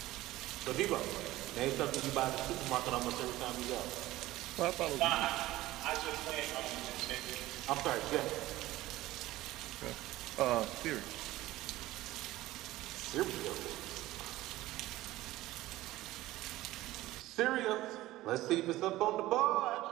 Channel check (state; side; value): quieter; left; 16.8 dB